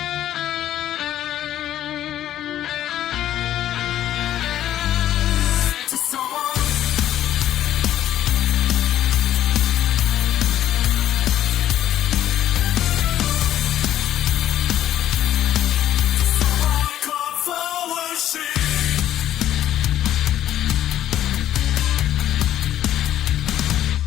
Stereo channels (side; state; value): right; quieter; 12.1 dB